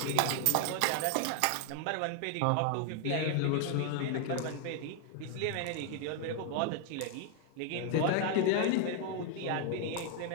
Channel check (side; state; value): both; different; correlation 0.01